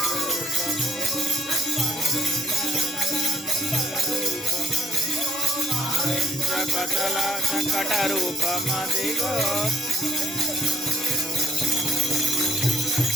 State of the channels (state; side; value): normal; both; correlation 0.61